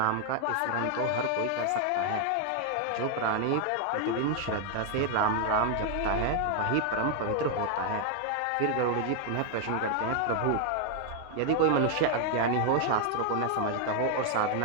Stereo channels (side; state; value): both; different; correlation 0.00